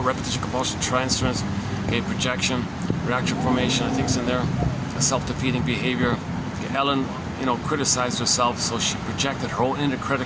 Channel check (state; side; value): identical; both; correlation 1.00